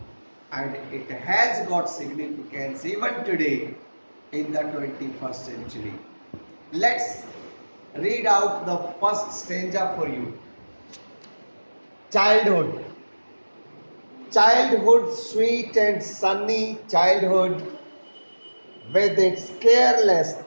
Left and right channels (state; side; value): inverted; both; correlation -1.00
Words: and it has got significance even today in the 21st century. Let's read out the first stanza for you. Childhood. Childhood, sweet and sunny childhood, with its careless,